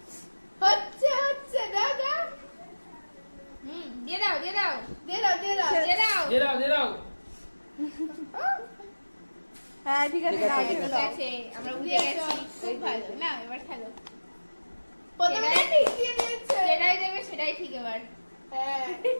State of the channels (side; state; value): both; inverted; correlation -1.00